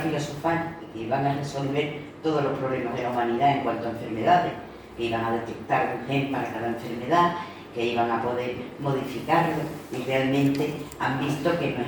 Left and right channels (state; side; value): identical; both; correlation 1.00